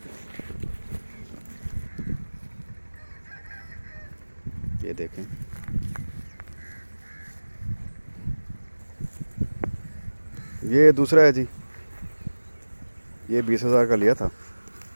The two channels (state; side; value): inverted; both; correlation -1.00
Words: ये देखें, ये दूसरा है जी, ये 20,000 का लिया था।